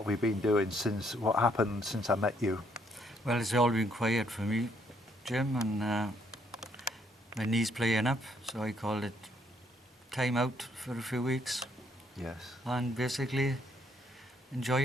have you been doing since, what happened since I met you? Well, it's all been quiet for me, Jim, and my knee's playing up, so I called it time out for a few weeks. Yes. And basically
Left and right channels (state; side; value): normal; both; correlation 0.69